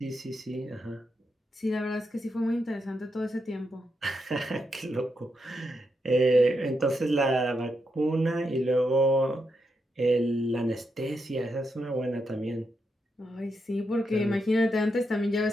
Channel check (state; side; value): normal; both; correlation 0.83